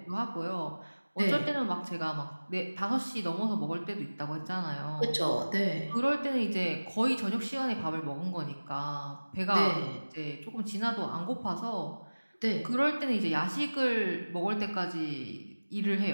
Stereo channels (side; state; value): both; inverted; correlation -1.00